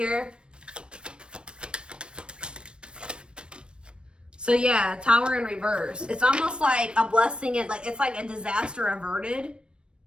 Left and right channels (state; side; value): late; left; 0.056 ms